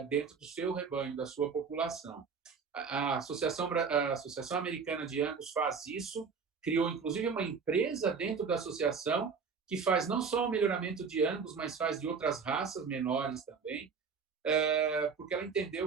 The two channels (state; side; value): quieter; left; 5.6 dB